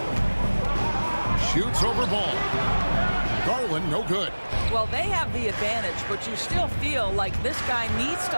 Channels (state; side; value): inverted; both; correlation -1.00